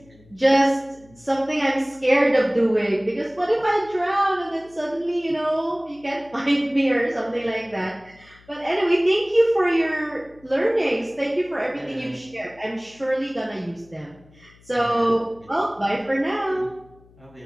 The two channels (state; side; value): noise; left; hum, 27 dB below the sound